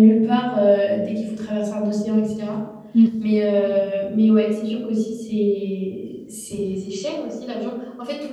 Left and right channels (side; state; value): both; identical; correlation 1.00